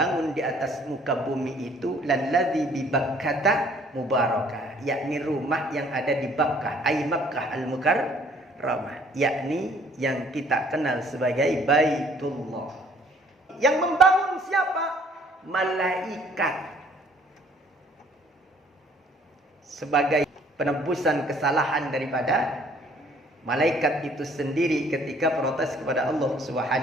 di atas muka bumi itu lalladzi bi Bakkah mubarakah, yakni rumah yang ada di Bakkah, ai Makkah al-Mukarramah, yakni yang kita kenal sebagai Baitullah. Yang membangun siapa? Malaikat. Sebagai penebusan kesalahan daripada malaikat itu sendiri ketika protes kepada Allah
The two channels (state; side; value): normal; both; correlation 0.59